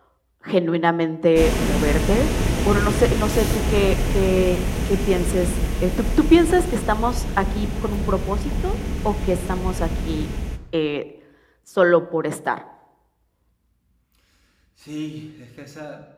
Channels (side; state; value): both; identical; correlation 1.00